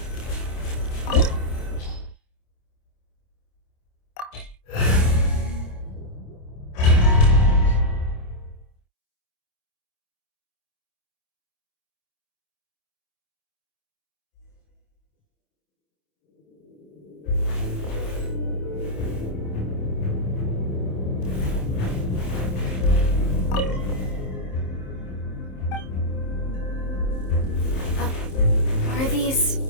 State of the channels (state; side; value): late; right; 27 ms